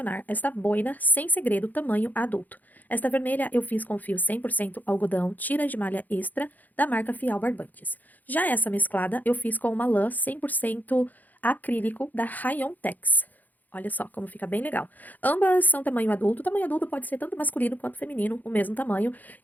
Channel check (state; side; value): late; right; 0.082 ms